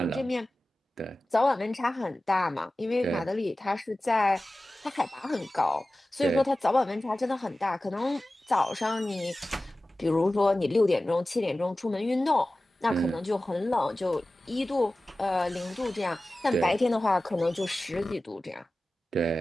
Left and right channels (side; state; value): both; normal; correlation 0.96